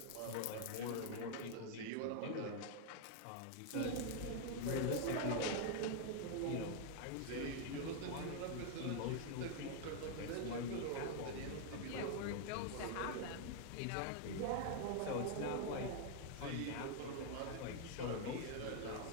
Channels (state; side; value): different; both; correlation 0.00